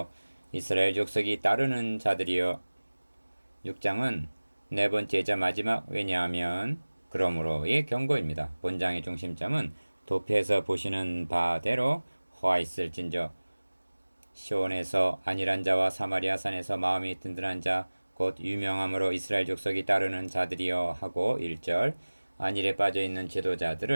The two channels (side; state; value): both; inverted; correlation -1.00